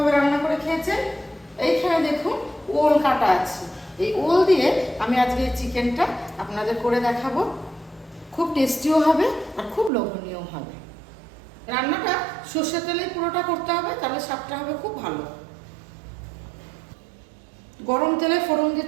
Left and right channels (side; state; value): left; drops out; at 9.9 s